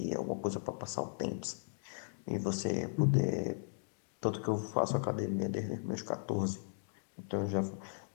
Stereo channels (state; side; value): silent; right; digital silence